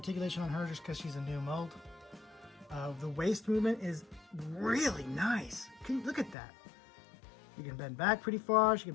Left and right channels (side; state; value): right; drops out; at 6.4 s